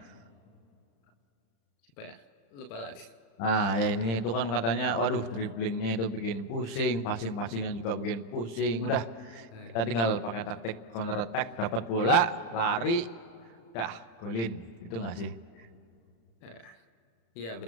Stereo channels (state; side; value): late; right; 35 ms